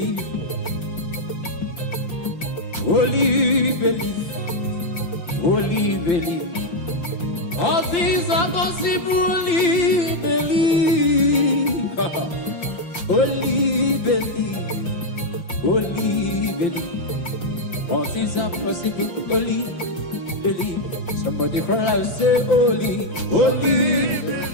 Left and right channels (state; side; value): late; right; 5.8 ms